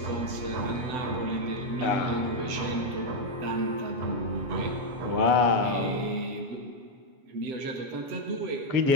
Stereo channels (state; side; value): late; left; 7.8 ms